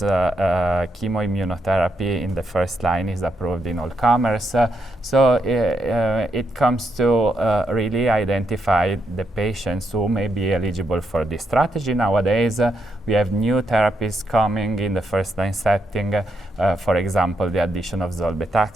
in the first line is approved in all comers. So it comes to really identify the patients who may be eligible for this strategy. Nowadays, we have new therapies coming in the first-line setting. For example, the addition of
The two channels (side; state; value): both; normal; correlation 0.80